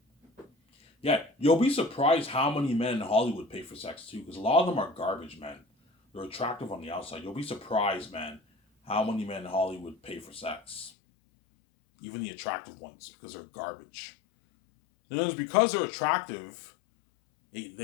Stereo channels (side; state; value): right; drops out; at 10.9 s